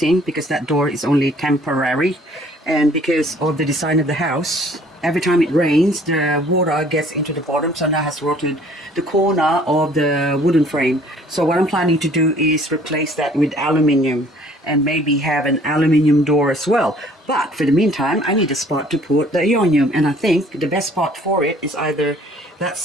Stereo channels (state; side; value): normal; both; correlation 0.56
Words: because that door is only temporary. And because of the design of the house, every time it rains, the water gets into the bottom, so now has rotted the corner of the wooden frame. So what I'm planning to do is replace that with aluminium, and maybe have an aluminium door as well. But for the meantime, I need a spot to put the Ionium, and I think the best spot for it is either that